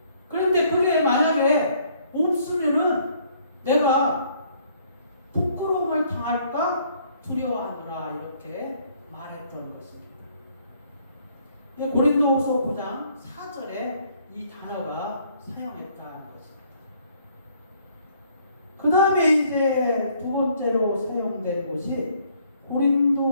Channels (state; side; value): inverted; both; correlation -0.64